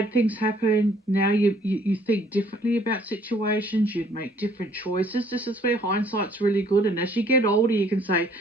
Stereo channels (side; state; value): both; normal; correlation 0.61